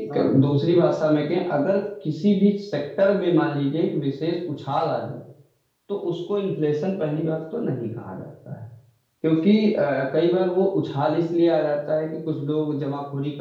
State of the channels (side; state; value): both; identical; correlation 1.00